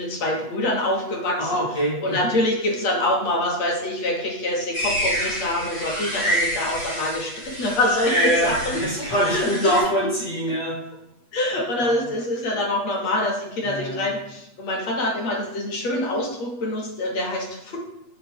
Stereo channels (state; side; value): late; right; 8.3 ms